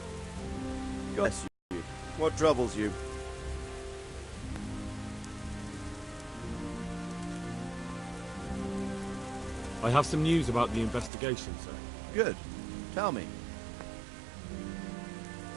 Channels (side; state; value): left; drops out; at 11.1 s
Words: Bless you. What troubles you? I have some news about the investigation, sir. Good. Tell me.